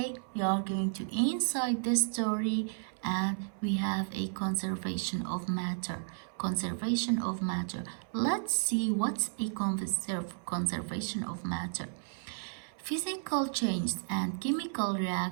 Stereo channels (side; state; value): left; silent; 56 dB below the other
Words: we are going to inside the story and we have a conservation of matter. Conservation of matter. Let's see what's a conservation of matter. Physical changes and chemical